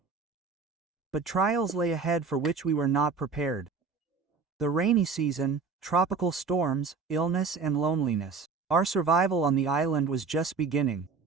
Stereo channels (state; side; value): quieter; left; 4.9 dB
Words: But trials lay ahead for which we were not prepared. The rainy season, tropical storms, illness and loneliness. Our survival on the island was just beginning.